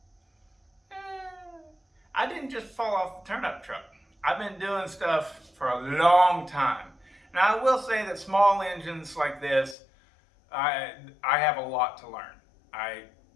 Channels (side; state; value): right; drops out; at 9.8 s